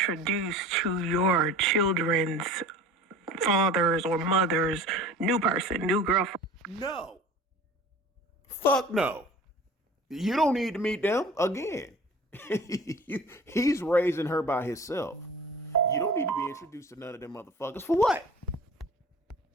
to your children's fathers or mothers, new person, new girlfriend. No. Fuck no. You don't need to meet them again. He's raising her by himself. You don't need to be introduced to none of them motherfuckers. For what?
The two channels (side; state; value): both; normal; correlation 0.41